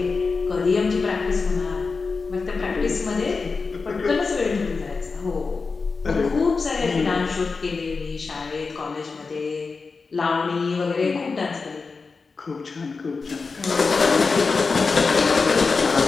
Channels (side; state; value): right; quieter; 4.5 dB